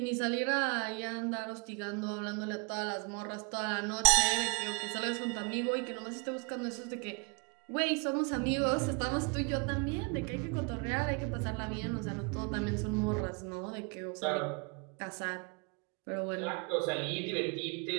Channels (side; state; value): left; quieter; 32.9 dB